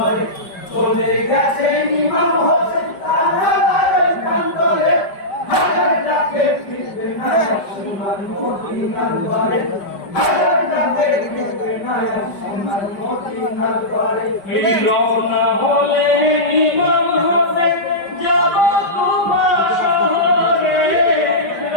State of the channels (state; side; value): late; right; 5.1 ms